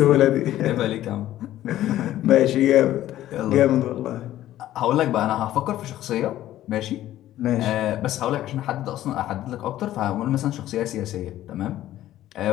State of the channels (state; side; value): quieter; right; 13.6 dB